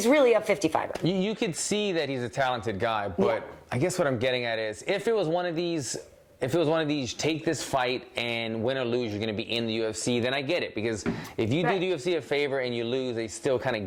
really a 55er. You could see that he's a talented guy, but I guess what I'm getting at is if it was one of these take this fight and win or lose, you're going to be in the UFC, then I get it. Because if you do the UFC a favor and you lose, they still kind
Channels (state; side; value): identical; both; correlation 1.00